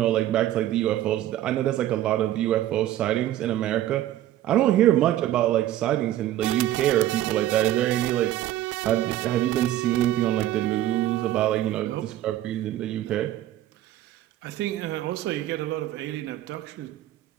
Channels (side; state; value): left; quieter; 13.4 dB